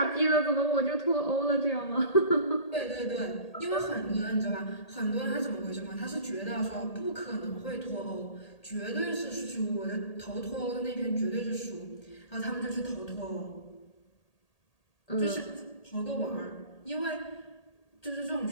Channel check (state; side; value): late; right; 1.8 ms